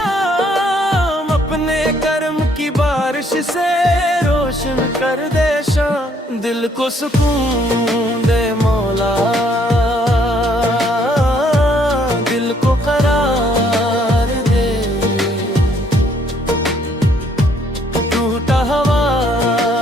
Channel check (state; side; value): normal; both; correlation 0.66